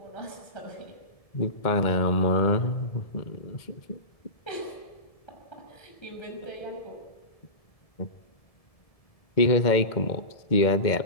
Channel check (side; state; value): right; late; 1.7 ms